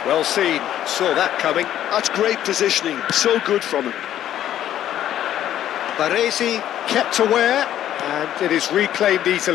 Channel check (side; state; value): right; quieter; 11.6 dB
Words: Well seen, saw that coming. That's great positioning, so good from him. Baresi kept aware, and it is reclaimed